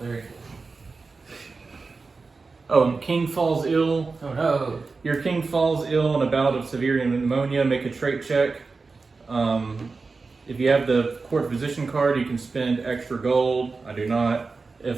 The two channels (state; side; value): quieter; left; 4.2 dB